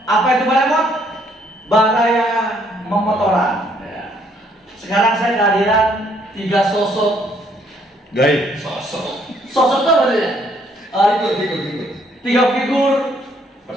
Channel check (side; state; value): both; normal; correlation 0.67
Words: Apa itu Baremot? Baraya Memotoran. Sekarang saya kehadiran 3 sosok gaib. Sosok itu apa sih? Figur. 3 figur